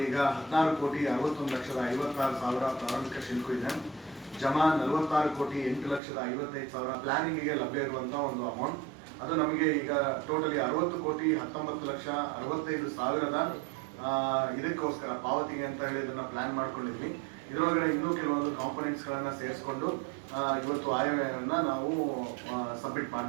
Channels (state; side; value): drops out; left; at 6.0 s